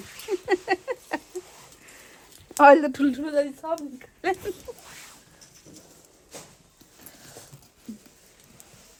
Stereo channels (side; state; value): both; identical; correlation 1.00